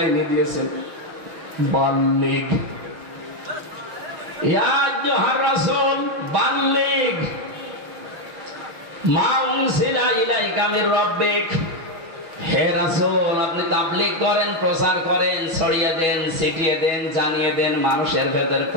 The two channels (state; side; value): late; left; 6.2 ms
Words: দিয়েছেন বাল্লিগ। ইয়া আইয়ুহার রাসূল বাল্লিগ মা উনসিলা ইলাইকা মির রাব্বিক। হে রাসূল আপনি তাবলীগ করেন, প্রচার করেন, ছড়িয়ে দেন, ছিটিয়ে দেন, জানিয়ে দেন, মানুষের ভেতরে